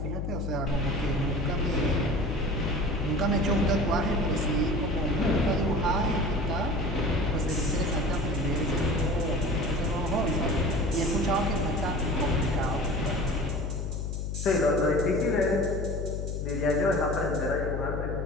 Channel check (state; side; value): noise; left; hum, 3 dB below the sound